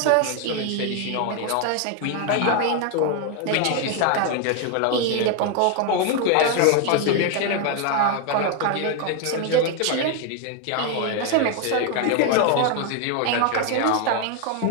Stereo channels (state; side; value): different; both; correlation 0.01